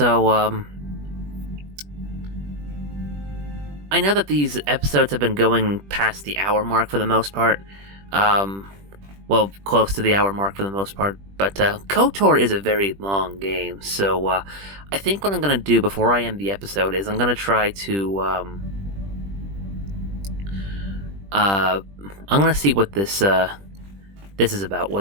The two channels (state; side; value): late; left; 20 ms